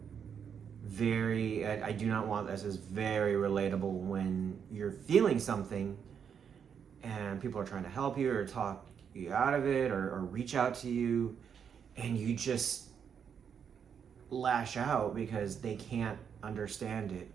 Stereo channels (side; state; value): left; quieter; 7.5 dB